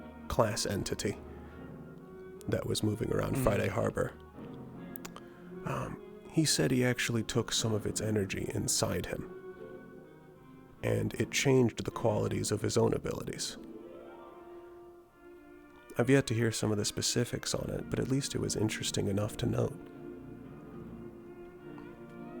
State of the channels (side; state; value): both; identical; correlation 1.00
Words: class entity that was moving around Friday Harbor. He said he actually took some of its energy inside him, and it changed the qualities of his own abilities. I've yet to hear some of the specifics on it, but at least it was interesting enough to note.